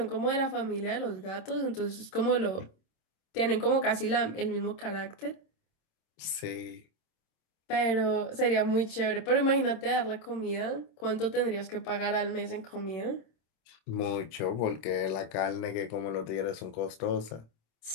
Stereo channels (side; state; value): right; late; 26 ms